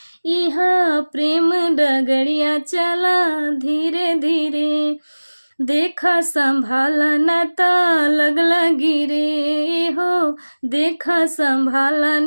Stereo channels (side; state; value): both; inverted; correlation -1.00